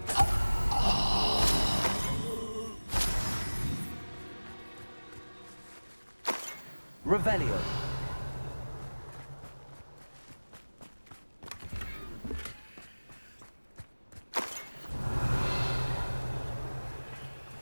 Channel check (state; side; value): inverted; both; correlation -1.00